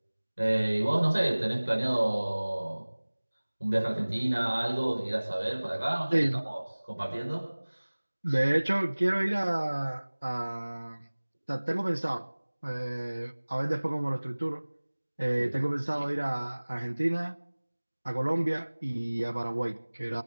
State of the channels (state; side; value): inverted; both; correlation -1.00